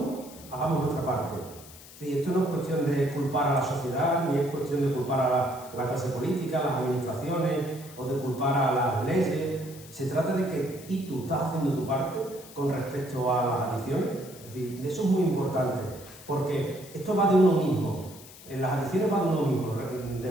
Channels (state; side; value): noise; left; hiss, 18 dB below the sound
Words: hagamos nuestra parte. Es decir, esto no es cuestión de culpar a la sociedad, ni es cuestión de culpar a la clase política, a las administraciones, o de culpar a las leyes. Se trata de que tú estás haciendo tu parte con respecto a las adicciones. Es decir, eso es muy importante, porque esto va de uno mismo. En las adicciones va de uno mismo. De